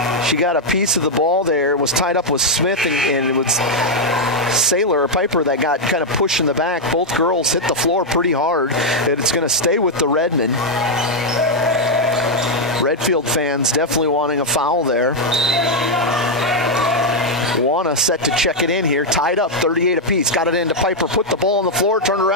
she got a piece of the ball there. Was tied up with Smith, and it was Sailor or Piper that got kind of pushed in the back. Both girls hit the floor pretty hard, and it's going to stay with the Redmond. Redfield fans definitely wanting a foul there. Wanna set to check it in here. Tied up, 38 apiece. Got it into Piper. Put the ball on the floor. Turned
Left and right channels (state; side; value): normal; both; correlation -0.01